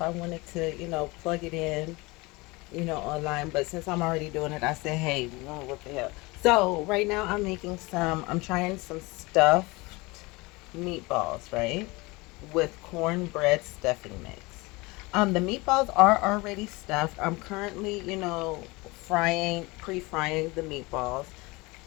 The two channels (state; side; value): quieter; right; 24.0 dB